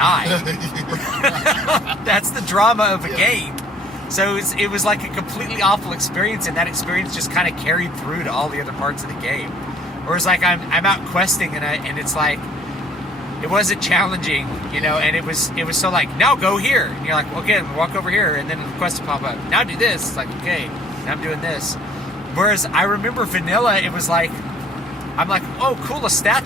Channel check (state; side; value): normal; both; correlation 0.56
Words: That's the drama of a game. So it was like a completely awful experience, and that experience just kind of carried through to all the other parts of the game. Whereas like I'm out questing, and it's like it wasn't challenging, and it was so like, now go here, and you're like, okay, walk over here, and then the quest will pop up. Now do this. It's like, okay, now I'm doing this. Whereas I remember vanilla, it was like, I'm like, oh, cool, a